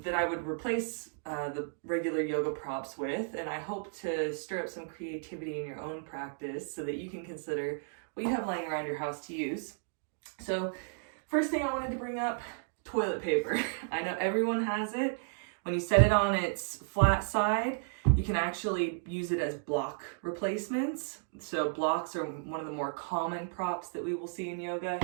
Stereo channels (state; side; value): silent; left; digital silence